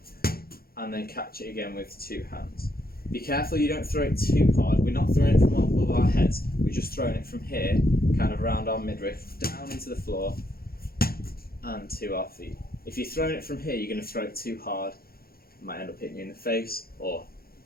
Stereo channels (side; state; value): right; late; 0.44 ms